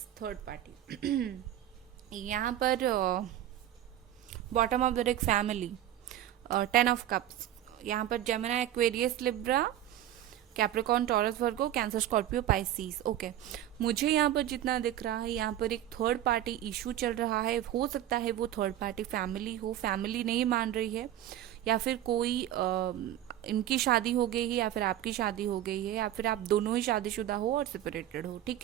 third party. यहाँ पर bottom of the deck family, 10 of cups. यहाँ पर Gemini, Aquarius, Libra, Capricorn, Taurus, Virgo, Cancer, Scorpio, Pisces. Okay, मुझे यहाँ पर जितना दिख रहा है, यहाँ पर एक थर्ड पार्टी इशू चल रहा है। हो सकता है वो थर्ड पार्टी फैमिली हो, फैमिली नहीं मान रही है, या फिर कोई इनकी शादी हो गई है, या फिर आपकी शादी हो गई है, या फिर आप दोनों ही शादीशुदा हो और सेपरेटेड हो। ठीक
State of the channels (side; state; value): left; quieter; 12.3 dB